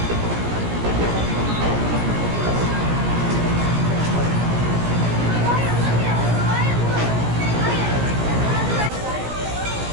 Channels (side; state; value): left; late; 17 ms